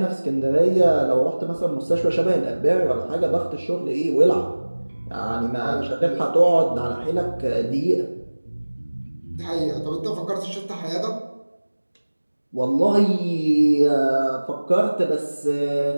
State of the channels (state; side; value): inverted; both; correlation -1.00